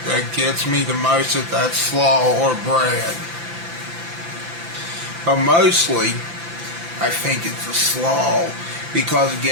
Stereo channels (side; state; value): left; late; 5.9 ms